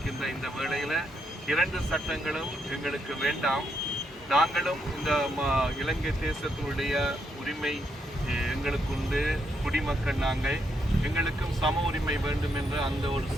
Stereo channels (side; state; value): both; normal; correlation 0.78